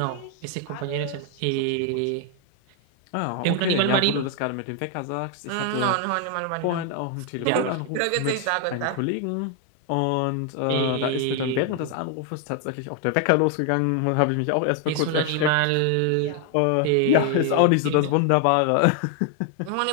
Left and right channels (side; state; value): both; different; correlation 0.00